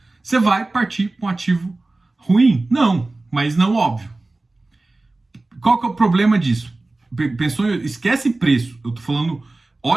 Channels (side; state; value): left; quieter; 3.1 dB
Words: Você vai partir para um ativo ruim? Não, mas não óbvio. Qual que é o problema disso? Pensou, esquece preço. Eu tô falando,